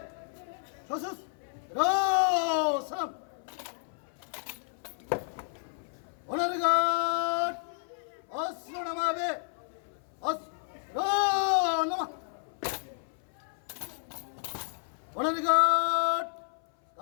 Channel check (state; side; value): silent; right; 57 dB below the other